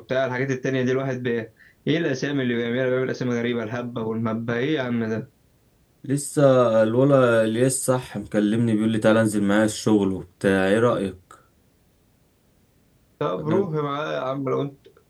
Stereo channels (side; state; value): both; identical; correlation 1.00